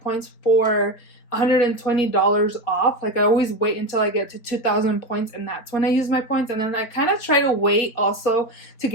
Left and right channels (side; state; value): right; late; 4.2 ms